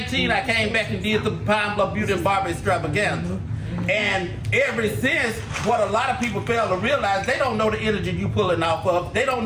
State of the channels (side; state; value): both; identical; correlation 1.00